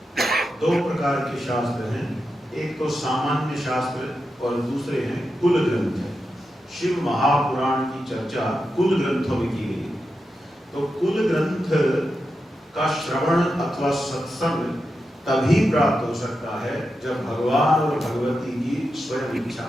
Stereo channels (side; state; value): both; normal; correlation 0.88